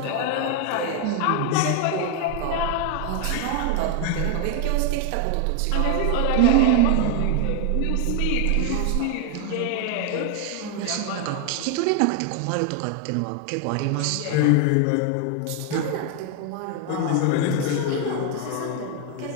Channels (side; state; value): both; different; correlation 0.00